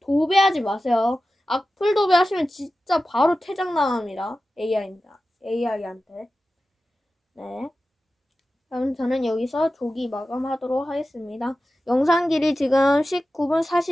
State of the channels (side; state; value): both; normal; correlation 0.94